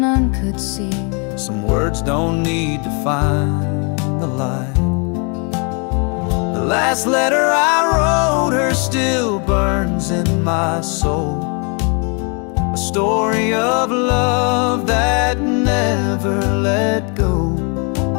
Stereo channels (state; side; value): quieter; right; 35.9 dB